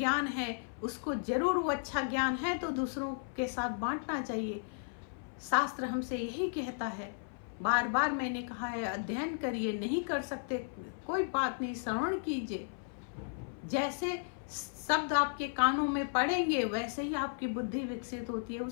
है उसको जरूर, वो अच्छा ज्ञान है तो दूसरों के साथ बांटना चाहिए। शास्त्र हमसे यही कहता है, बार बार मैंने कहा है, अध्ययन करिए, नहीं कर सकते कोई बात नहीं, श्रवण कीजिए। जैसे शब्द आपके कानों में पड़ेंगे वैसे ही आपकी बुद्धि विकसित होती है,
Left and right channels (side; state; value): right; silent; 55 dB below the other